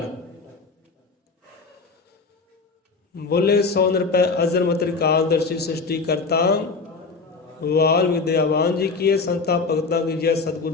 ਬੋਲੇ 100 ਨਿਰਪੈ ਅਜ਼ਰ ਮਤਿ ਕਾਲਦਰਸ਼ੀ ਸ੍ਰਿਸ਼ਟੀ ਕਰਤਾ, ਵਾਲ ਵਿਦਿਆਵਾਨ ਜੀ ਕੀਏ ਸੰਤਾ ਭਗਤਾਂ ਕੀ ਜੈ, ਸਤਿਗੁਰ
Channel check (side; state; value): right; quieter; 4.3 dB